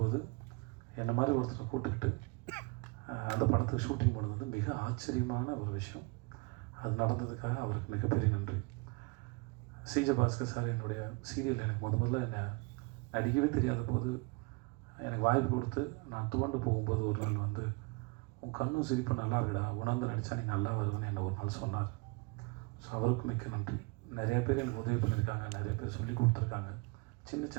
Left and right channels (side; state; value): left; quieter; 28.5 dB